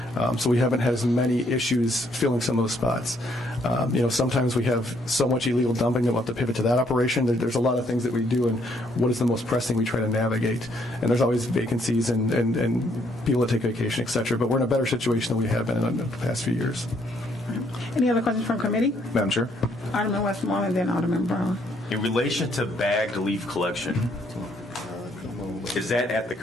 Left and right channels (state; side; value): normal; both; correlation 0.69